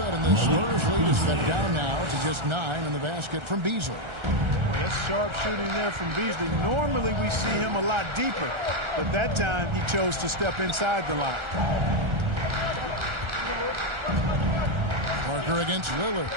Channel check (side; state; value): left; late; 1.3 ms